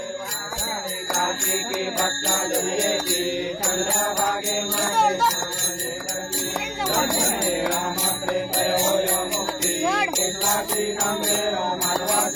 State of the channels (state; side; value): identical; both; correlation 1.00